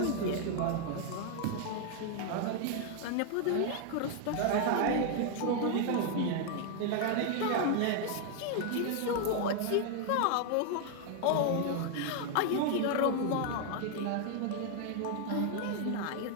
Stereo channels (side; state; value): both; different; correlation 0.00